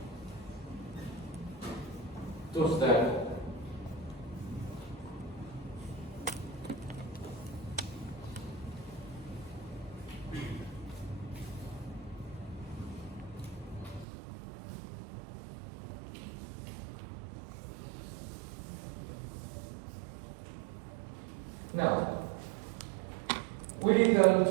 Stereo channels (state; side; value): drops out; left; at 14.1 s